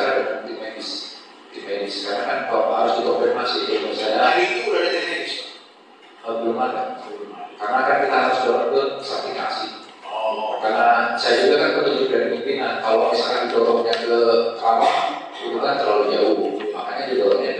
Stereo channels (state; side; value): identical; both; correlation 1.00